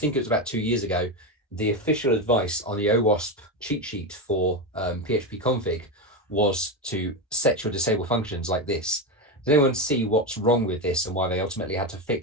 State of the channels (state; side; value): normal; both; correlation 0.14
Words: it was about 2 years ago, the official advice on the OWASP cheat sheet for PHP config was to set your disable functions like this. Does anyone see what's wrong with this and why they ultimately had to